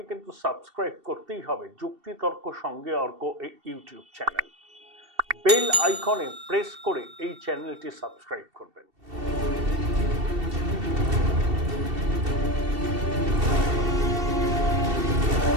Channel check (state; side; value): late; left; 2.7 ms